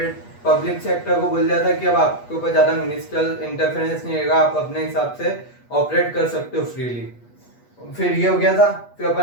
पब्लिक सेक्टर को बोल दिया था कि अब आपके ऊपर ज्यादा मिनिस्ट्रियल इंटरफेरेंस नहीं रहेगा, आप अपने हिसाब से ऑपरेट कर सकते हो फ्रीली। फिर ये हो गया था। फिर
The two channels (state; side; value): late; right; 8.3 ms